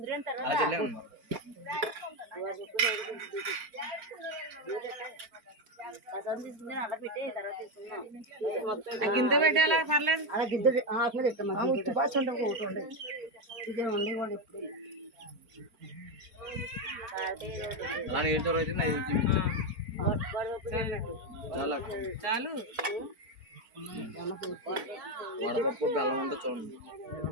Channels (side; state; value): left; late; 4.4 ms